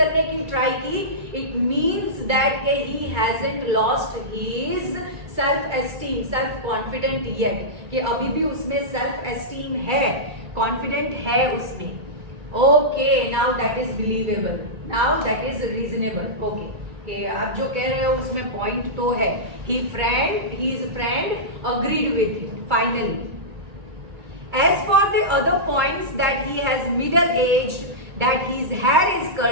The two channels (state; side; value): late; left; 2.3 ms